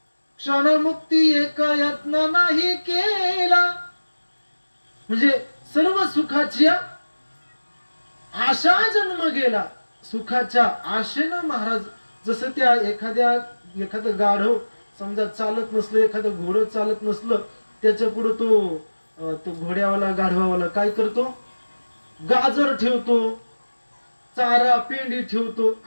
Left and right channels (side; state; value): both; inverted; correlation -1.00